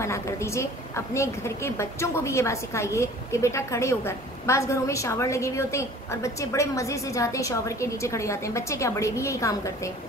کر دیجئے. اپنے گھر کے بچوں کو بھی یہ بات سکھائیے کہ بیٹا کھڑے ہو کر. بعض گھروں میں شاور لگے ہوئے ہوتے ہیں اور بچے بڑے مزے سے جاتے ہیں شاور کے نیچے کھڑے جاتے ہیں. بچے کیا، بڑے بھی یہی کام کرتے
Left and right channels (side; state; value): both; normal; correlation 0.48